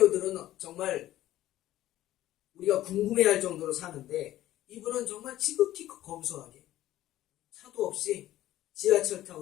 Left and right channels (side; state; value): right; quieter; 14.2 dB